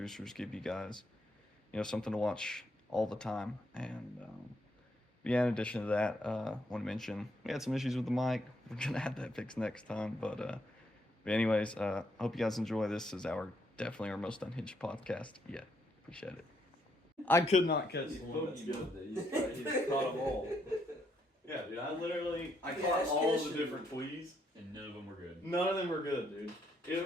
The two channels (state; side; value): normal; both; correlation 0.74